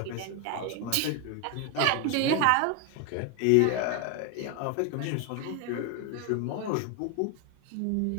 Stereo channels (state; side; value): different; both; correlation 0.01